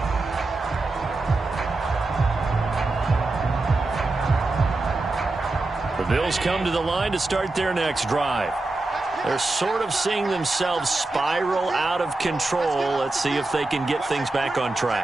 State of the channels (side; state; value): left; quieter; 3.1 dB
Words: The Bills come to the line to start their next drive. They're sort of seeing themselves spiral out of control. Let's see if they can get things back on